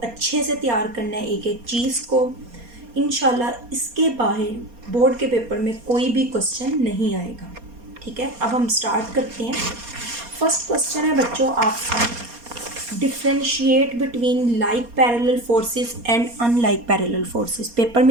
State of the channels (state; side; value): late; left; 4.3 ms